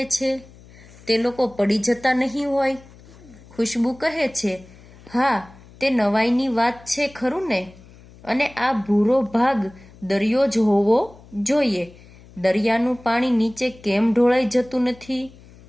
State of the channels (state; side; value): noise; left; hum, 23 dB below the sound